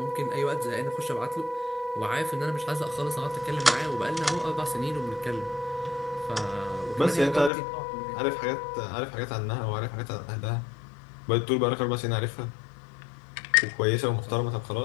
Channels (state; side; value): drops out; right; at 7.5 s